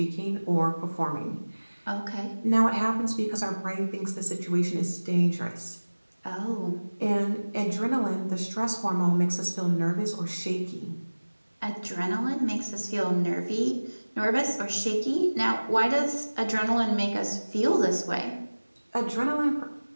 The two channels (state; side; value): inverted; both; correlation -1.00